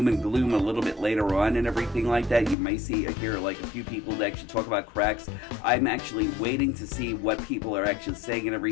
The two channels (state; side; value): drops out; right; at 2.6 s